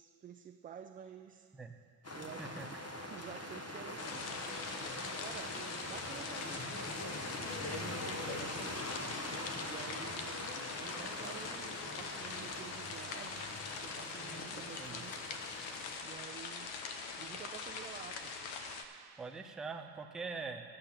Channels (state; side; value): normal; both; correlation 0.07